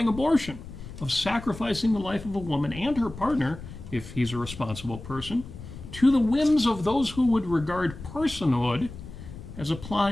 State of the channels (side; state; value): left; noise; rumble, 13 dB below the sound